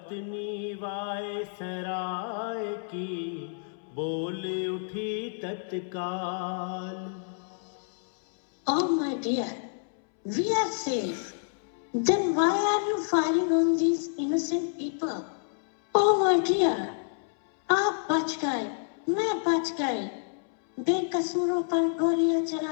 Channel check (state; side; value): silent; right; 59 dB below the other